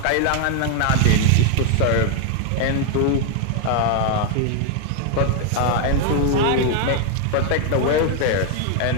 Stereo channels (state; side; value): different; both; correlation 0.00